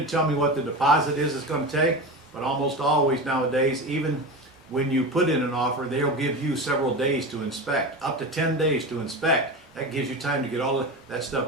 tell me what the deposit is it's going to take, but almost always nowadays, even when you put in an offer, they'll give you several days to inspect, up to 10 days to inspect. That gives you time to get all of that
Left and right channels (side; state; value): both; normal; correlation 0.25